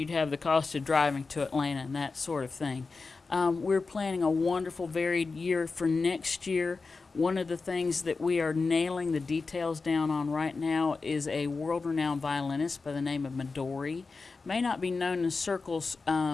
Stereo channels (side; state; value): right; quieter; 4.2 dB